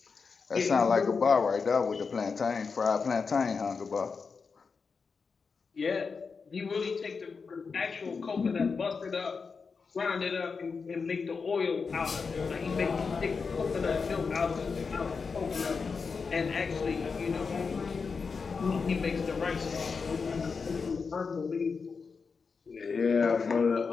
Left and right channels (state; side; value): quieter; right; 5.1 dB